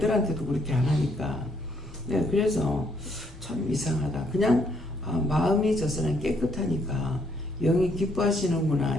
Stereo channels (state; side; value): normal; both; correlation 0.70